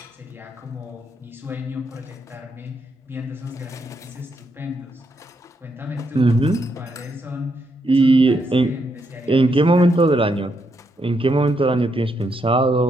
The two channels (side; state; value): both; normal; correlation 0.79